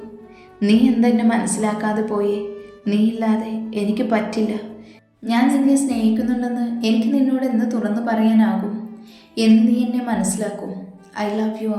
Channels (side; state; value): both; identical; correlation 1.00